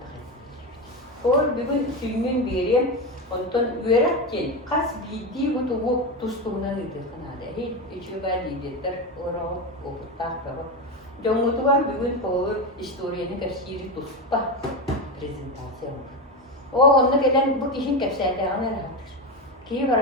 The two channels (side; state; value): both; normal; correlation 0.16